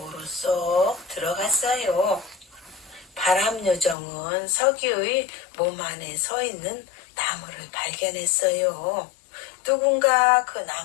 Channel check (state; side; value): drops out; right; at 4.0 s